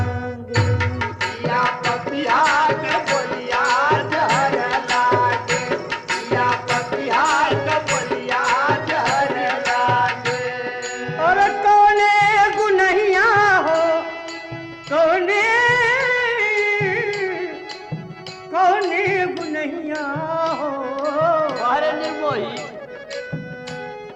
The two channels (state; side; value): identical; both; correlation 1.00